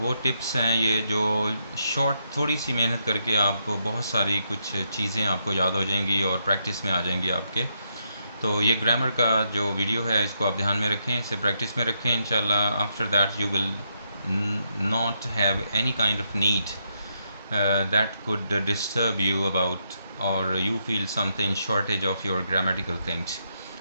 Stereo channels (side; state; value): both; inverted; correlation -0.79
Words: टिप्स हैं ये जो शॉर्ट थोड़ी सी मेहनत करके आपको बहुत सारी कुछ चीज़ें आपको याद हो जाएंगी और प्रैक्टिस में आ जाएंगी आपके। तो ये ग्रामर का जो वीडियो है इसको आप ध्यान में रखें, इसे प्रैक्टिस में रखें। इंशाल्लाह after that you will not have any kind of need that could disturb you about or you feel something shortage of your grammatical things।